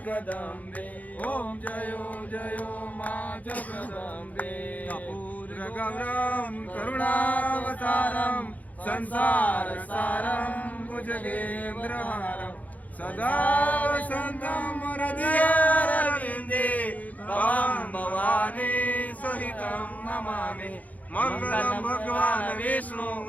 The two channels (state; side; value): late; right; 0.076 ms